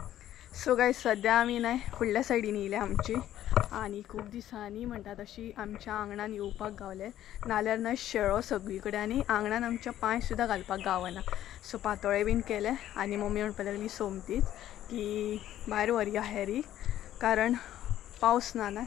सो गायज सद्या आमी न्हय फुडल्या सायडीन येयल्या आमची आनी खूब दिसांनी म्हणटा तशी आमच्या आंगणान येवपाक गावले. नाल्यार न्हय शेळो सगळी कडेन आनी आंगणान आमच्या पांय सुद्दां घालपाक गावना. सो पातोळे बीन केले आनी मम्मी म्हणपाक लागली सोमतीच की भायर व्हरया हेरी कारण पावस ना न्हय.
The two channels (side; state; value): right; quieter; 12.4 dB